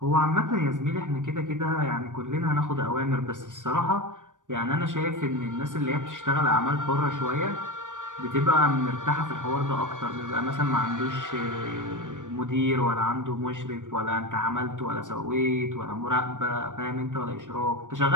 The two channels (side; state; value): left; late; 0.87 ms